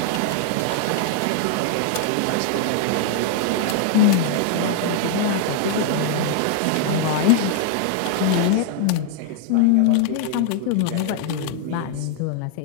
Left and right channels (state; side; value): different; both; correlation 0.00